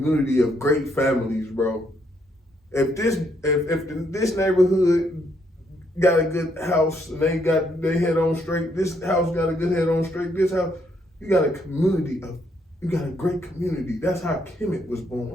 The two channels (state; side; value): normal; both; correlation 0.73